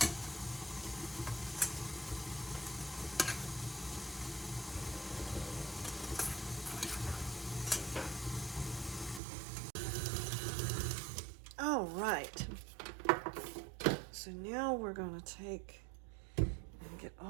All right. So now we're going to take and get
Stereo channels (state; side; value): drops out; left; at 9.2 s